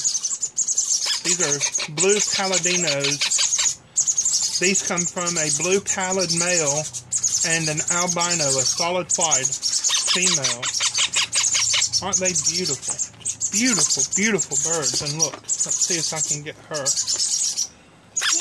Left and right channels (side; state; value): both; identical; correlation 1.00